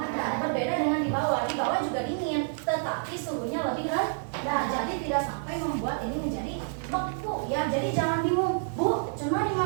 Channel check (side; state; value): left; silent; 59 dB below the other